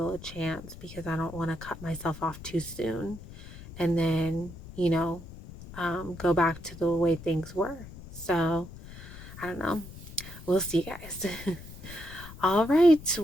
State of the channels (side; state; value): left; noise; rumble, 15 dB below the sound